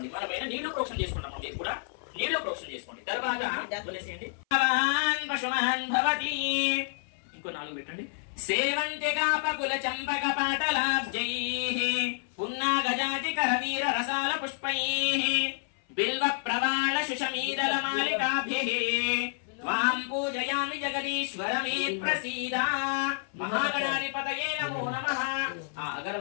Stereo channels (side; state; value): right; silent; 57 dB below the other